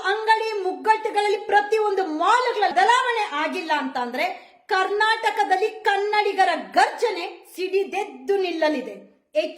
ಅಂಗಡಿ ಮುಗ್ಗಟ್ಟುಗಳಲ್ಲಿ, ಪ್ರತಿಯೊಂದು ಮಾಲ್ಗಳ ಬದಲಾವಣೆ ಆಗಿಲ್ಲ ಅಂತಂದ್ರೆ ಕರ್ನಾಟಕದಲ್ಲಿ ಕನ್ನಡಿಗರ ಗರ್ಜನೆ ಸಿಡಿದೆದ್ದು ನಿಲ್ಲಲಿದೆ.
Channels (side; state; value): both; identical; correlation 1.00